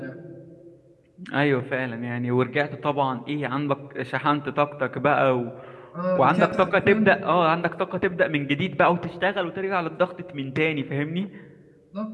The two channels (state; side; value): identical; both; correlation 1.00